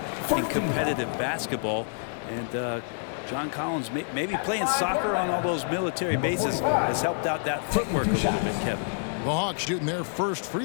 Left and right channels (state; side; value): silent; right; 58 dB below the other